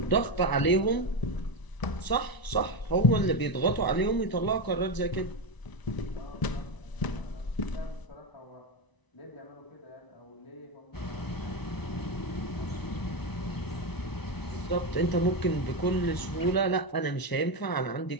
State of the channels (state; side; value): late; right; 1.0 ms